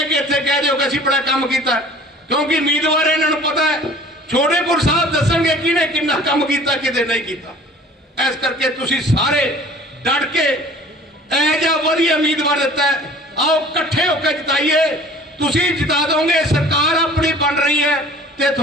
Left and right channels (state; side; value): normal; both; correlation 0.48